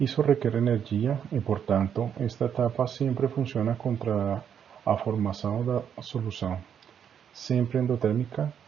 requer energia e, portanto, esta etapa sempre funciona contra a formação da solução, sempre endotérmica,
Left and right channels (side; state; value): left; quieter; 8.3 dB